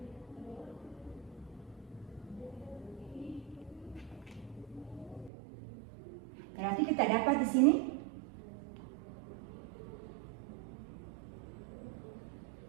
berarti kita dapat di sini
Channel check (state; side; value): drops out; left; at 5.3 s